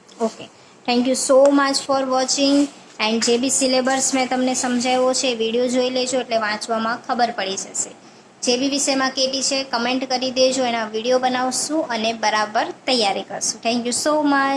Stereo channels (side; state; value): both; identical; correlation 1.00